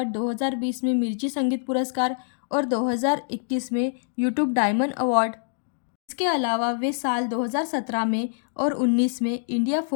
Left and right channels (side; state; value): right; silent; digital silence